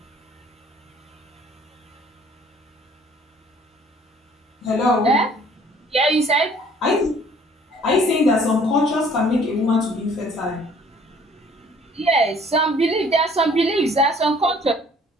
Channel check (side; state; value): both; normal; correlation 0.56